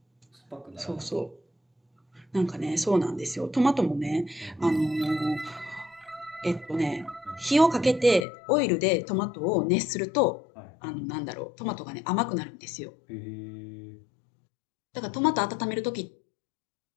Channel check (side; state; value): right; drops out; at 8.2 s